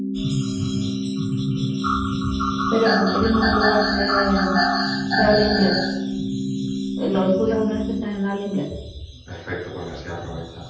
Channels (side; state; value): both; identical; correlation 1.00